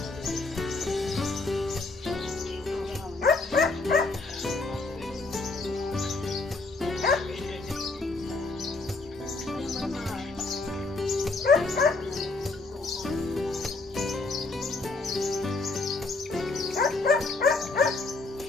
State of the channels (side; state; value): right; quieter; 3.5 dB